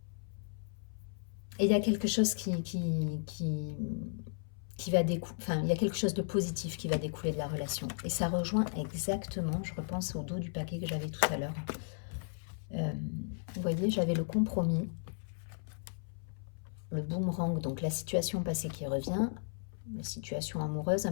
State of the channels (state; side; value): silent; right; 54 dB below the other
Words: Et il y a quelque chose qui va découler, enfin, il y a quelque chose de positif qui va découler de la relation. Et ça rejoint exactement, je repense au dos du paquet que j'avais tout à l'heure. Vous voyez, j'avais le compromis, le boomerang, donc la situation passée qui revient, la situation amoureuse, à